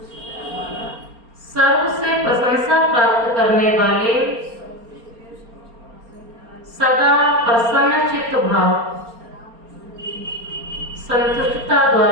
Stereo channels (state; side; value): late; left; 4.3 ms